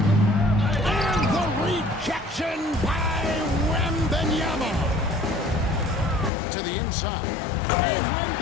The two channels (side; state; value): right; drops out; at 6.3 s